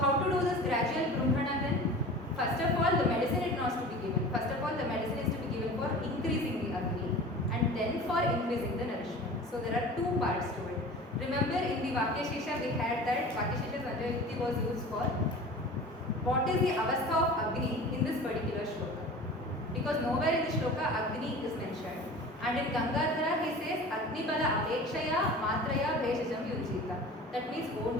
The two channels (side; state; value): both; normal; correlation 0.38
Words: to do this gradual brumhana then? First of all, the medicine is not to be given. First of all, the medicine is to be given for increasing the Agni and then for increasing the nourishment. So there are two parts to it. Remember in the Vakyashesha we had that Vakyashesha's Anjayukti was used for what is the avastha of Agni in this particular shloka. Because nowhere in the shloka Agni is mentioned. And in Gangadhara he says Agni Bala Apekshaya Matraya Bheshajam Yujita. That means